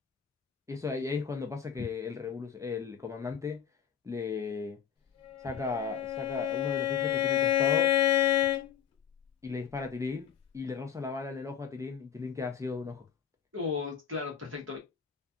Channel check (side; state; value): right; quieter; 8.2 dB